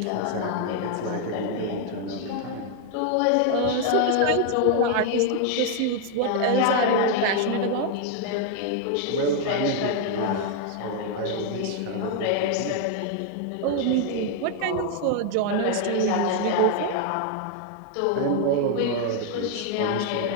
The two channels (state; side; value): different; both; correlation 0.00